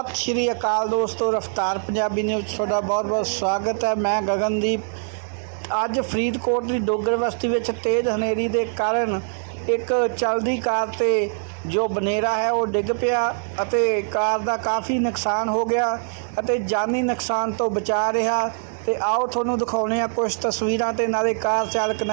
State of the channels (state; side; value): silent; left; digital silence